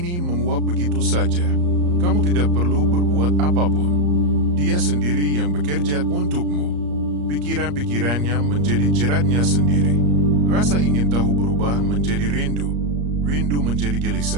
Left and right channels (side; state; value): left; late; 34 ms